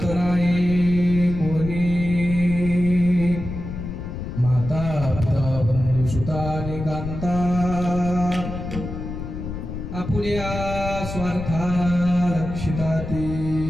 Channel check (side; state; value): left; noise; rumble, 7 dB below the sound